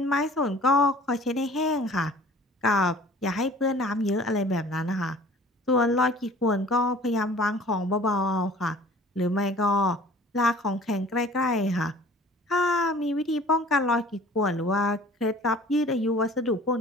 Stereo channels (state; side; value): normal; both; correlation 0.49